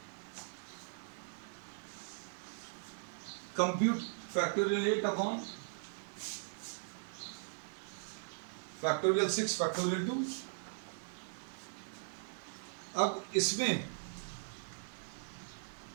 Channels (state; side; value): silent; left; 52 dB below the other